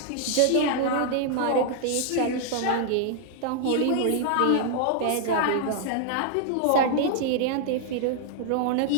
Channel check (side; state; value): both; different; correlation -0.01